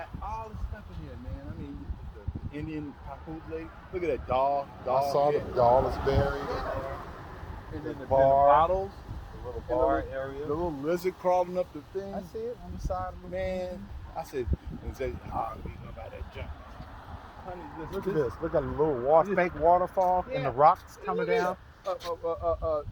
all the stuff in here, man. I mean, the Indian papoose. Look at that dog I saw the head. doll is buried in Yeah. there. And then the bar, bottles, the little and the bar little, area. the little lizard crawling up the thing. I see it on the side of the Man, I said, and say, oh, we gonna buy that junk. Honey, Look at this. Look at a little fake waterfall and the rocks coming down. A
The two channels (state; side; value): identical; both; correlation 1.00